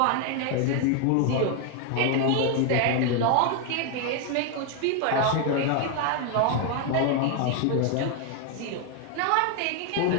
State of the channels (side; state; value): both; different; correlation 0.01